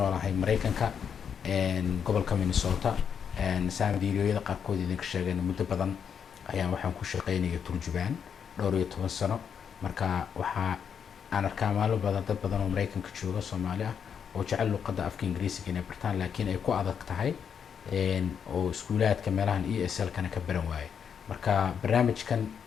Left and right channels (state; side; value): quieter; right; 7.4 dB